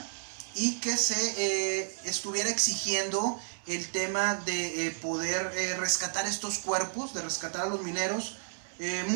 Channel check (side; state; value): left; silent; digital silence